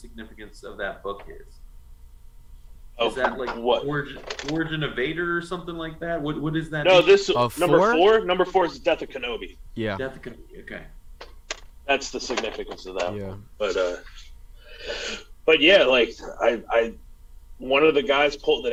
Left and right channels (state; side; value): identical; both; correlation 1.00